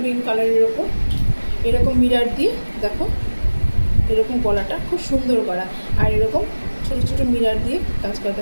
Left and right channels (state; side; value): inverted; both; correlation -1.00